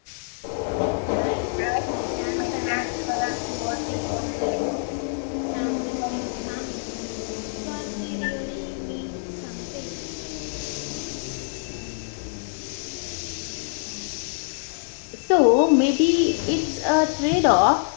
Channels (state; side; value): silent; right; digital silence